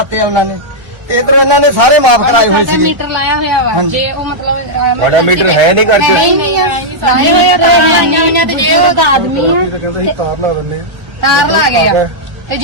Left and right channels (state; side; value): late; left; 1.0 ms